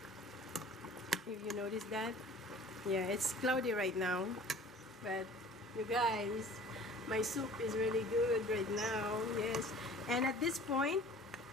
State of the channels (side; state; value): both; normal; correlation 0.46